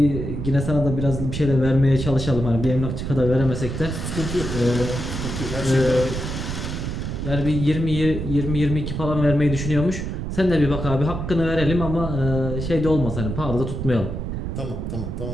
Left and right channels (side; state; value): right; noise; rumble, 4 dB below the sound